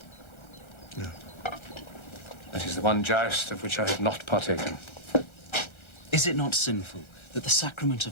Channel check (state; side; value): late; right; 1.4 ms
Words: No. That is the one joust of which I have not partaken. Is it not sinful that the sacrament